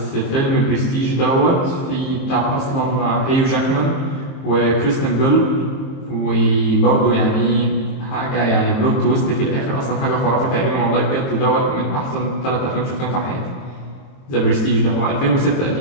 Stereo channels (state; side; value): late; right; 22 ms